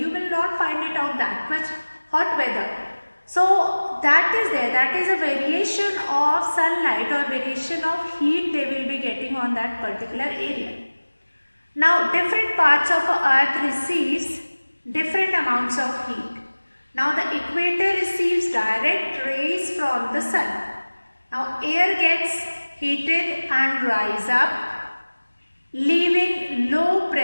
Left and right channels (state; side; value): inverted; both; correlation -1.00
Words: will not find it out that much hot weather. So that is there, that is a variation of sunlight or variation of heat they will be getting on that particular area. Now different parts of earth receives different amounts of heat. Now the equator receives direct rays from the sun. Now air gets heated and rise up, leaving low